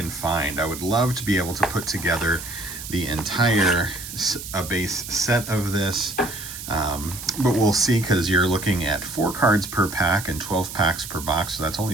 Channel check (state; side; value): noise; right; hiss, 10 dB below the sound